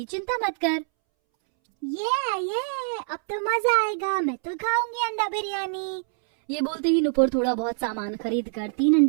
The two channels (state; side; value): silent; left; 62 dB below the other